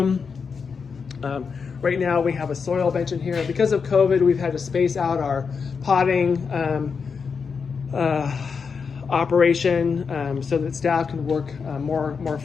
Right now we have a soil bench in here. Because of COVID, we've had to space out our potting operation so that staff can work more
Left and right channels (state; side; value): quieter; right; 5.7 dB